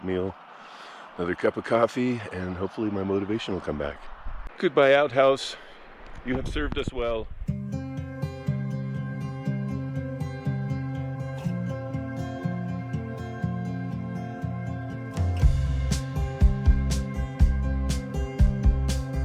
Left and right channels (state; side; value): identical; both; correlation 1.00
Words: another cup of coffee, and hopefully my motivation will come back. Goodbye, outhouse. You have served us well.